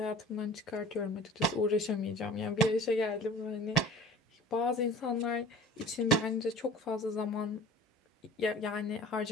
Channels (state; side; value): normal; both; correlation 0.42